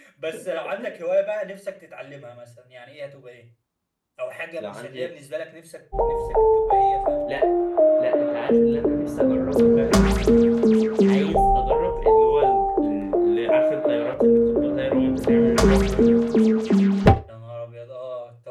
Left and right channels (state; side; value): identical; both; correlation 1.00